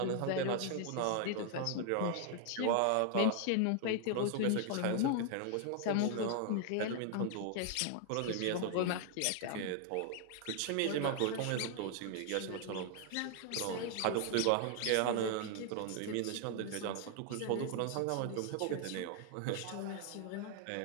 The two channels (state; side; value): different; both; correlation 0.00